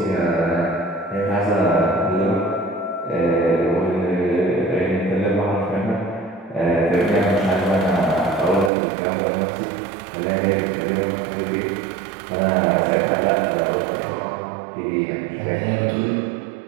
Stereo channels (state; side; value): drops out; left; at 8.7 s